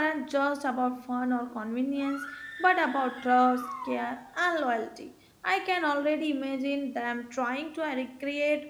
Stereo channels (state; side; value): identical; both; correlation 1.00